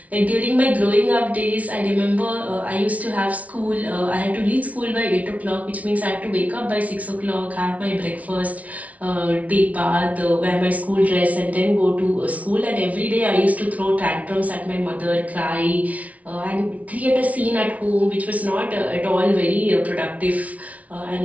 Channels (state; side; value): late; left; 0.068 ms